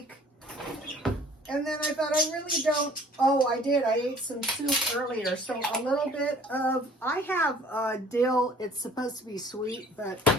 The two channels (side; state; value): both; normal; correlation 0.53